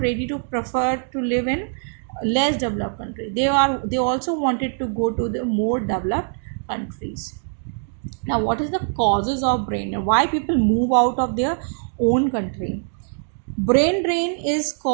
ready to prefer to live in less developed country. They also wanted to go to the more developed countries. Now, what is the causes of brain drain? Why people move out of their own country? Brain drain is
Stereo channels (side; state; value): left; silent; 64 dB below the other